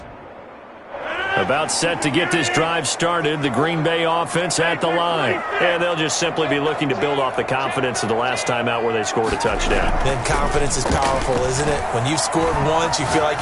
About set to get this drive started, the Green Bay offense at the line. And they'll just simply be looking to build off the confidence of the last time out where they scored a touchdown. Then confidence is powerful, isn't it? When you've scored once, you feel like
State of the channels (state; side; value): identical; both; correlation 1.00